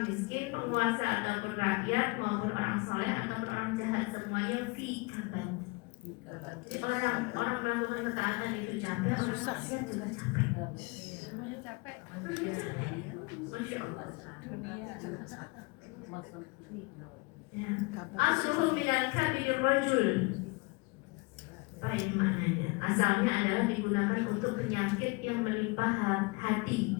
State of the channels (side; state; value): right; quieter; 27.5 dB